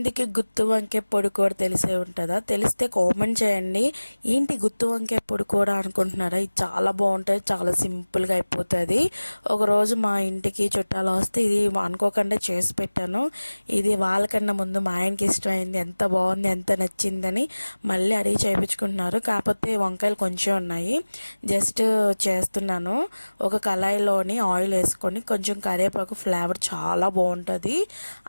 గుత్తి వంకాయ పొడి కూర తెలిసే ఉంటుందా? తెలిస్తే కామెంట్ చేయండి. ఏంటి గుత్తి వంకాయ పొడి కూర అనుకుంటున్నారా? ఇది చాలా బాగుంటుంది, చాలా సింపుల్గా అయిపోతుంది. ఒకరోజు మా ఇంటికి చుట్టాలు వస్తే ఇది అనుకోకుండా చేసి పెట్టాను. ఇది వాళ్ళకన్నా ముందు మా ఆయనకి ఇష్టమైంది, ఎంత బాగుంది, ఎంత నచ్చిందని మళ్ళీ అడిగి చేయించుకుంటున్నారు. కాకపోతే వంకాయలు కొంచెం ఉన్నాయి, జస్ట్ చేస్తున్నాను. ఒక కళాయిలోని ఆయిల్ వేసుకొని కొంచెం కరివేపాకు, ఫ్లేవర్ చాలా బాగుంటుంది.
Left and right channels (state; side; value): inverted; both; correlation -1.00